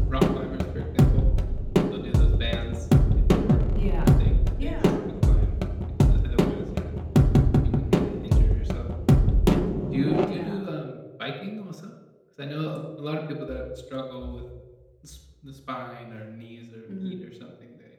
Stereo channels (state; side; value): identical; both; correlation 1.00